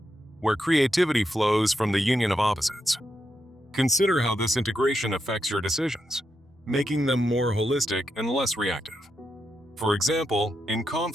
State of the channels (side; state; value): both; normal; correlation 0.84